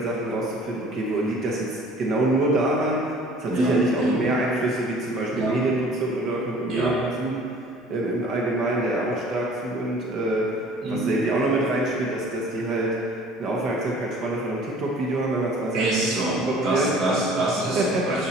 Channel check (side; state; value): both; normal; correlation 0.50